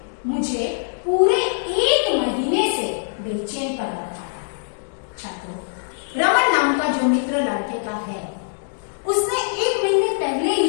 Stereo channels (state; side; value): silent; right; digital silence